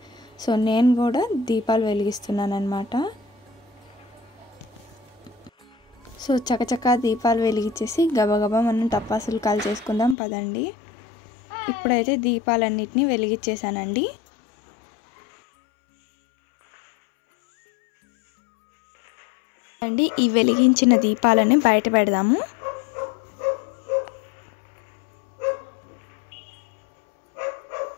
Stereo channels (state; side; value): drops out; right; at 10.2 s